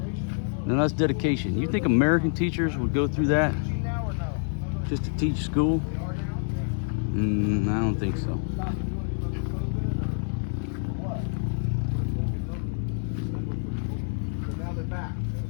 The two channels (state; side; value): silent; right; 60 dB below the other